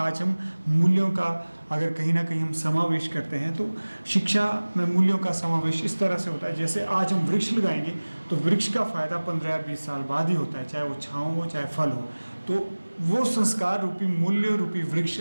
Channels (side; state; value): both; inverted; correlation -1.00